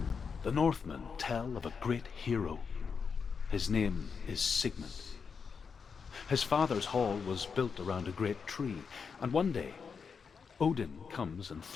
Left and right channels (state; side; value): quieter; right; 5.8 dB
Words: The Northmen tell of a great hero. His name is Sigmund. His father's hall was built around a great tree, and one day, Odin comes and